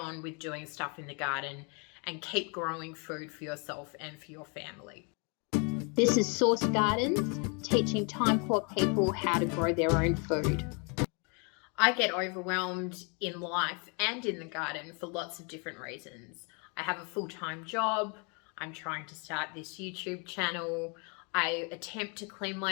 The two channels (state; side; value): quieter; right; 34.5 dB